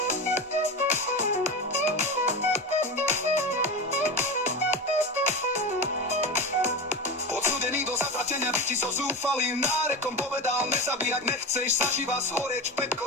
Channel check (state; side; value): normal; both; correlation 0.23